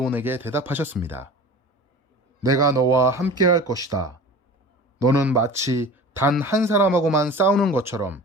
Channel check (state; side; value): normal; both; correlation 0.38